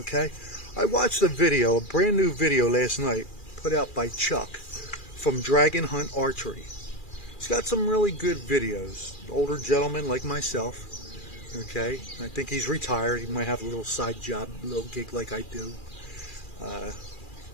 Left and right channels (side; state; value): right; late; 2.4 ms